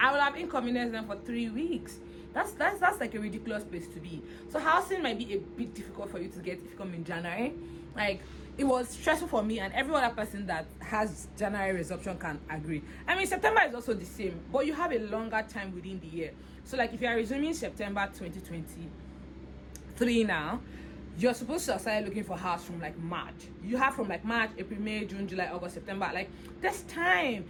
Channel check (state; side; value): identical; both; correlation 1.00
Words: I would have inconvenienced them for 3 weeks. That's like a ridiculous place to be. So housing might be a bit difficult for you to get if you come in January. Like it was stressful for me, and every other person that has January resumption can agree. I mean, September is also the same, but you have a longer time within the year. So like if you are resuming September 2023 now, you're supposed to start looking for house from like March. You have from like March, April, May, June, July, August, September. Like there's time.